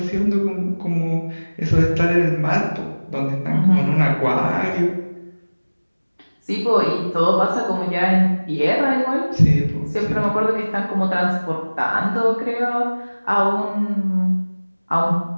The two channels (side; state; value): both; inverted; correlation -1.00